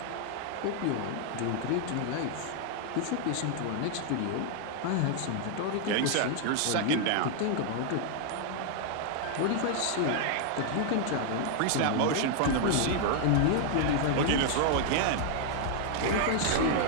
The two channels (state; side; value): different; both; correlation 0.00